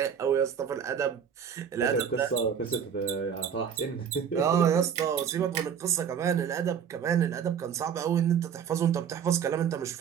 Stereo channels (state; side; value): quieter; left; 7.8 dB